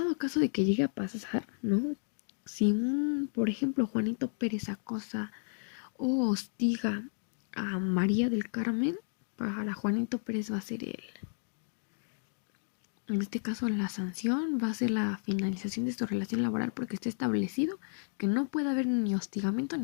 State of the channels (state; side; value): silent; right; digital silence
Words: caso de que llegue a pasar, ¿no? Si por ejemplo, Juanito Pérez acosa o hostiga a María del Carmen, para Juanito Pérez va a ser en este caso la sanción va a ser la finalización de su relación laboral porque está establecido que no puede haber ni hostigamiento